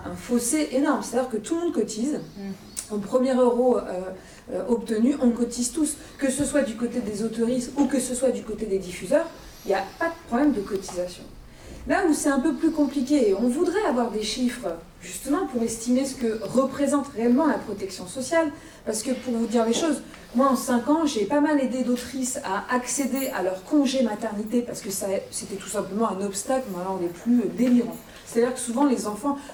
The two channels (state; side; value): identical; both; correlation 1.00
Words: fossé énorme. C'est-à-dire que tout le monde cotise. Au premier euro obtenu, on cotise tous. Que ce soit du côté des autoristes ou que ce soit du côté des diffuseurs, il n'y a pas de problème de cotisation. Là où c'est un peu plus compliqué, et on voudrait avoir des chiffres justement pour estimer ce que représente réellement la protection sociale, parce que pour vous dire les choses, moi en 5 ans, j'ai pas mal aidé d'autrices à accéder à leur congé maternité, parce que c'était tout simplement un obstacle, mais alors les plus délirants. C'est-à-dire que souvent les enfants,